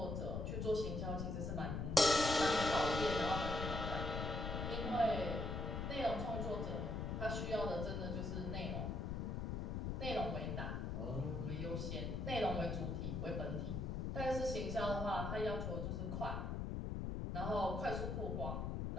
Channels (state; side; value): noise; left; rumble, 2 dB below the sound